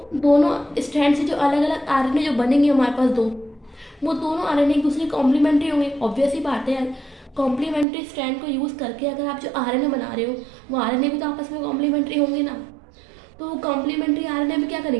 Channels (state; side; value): drops out; left; at 7.9 s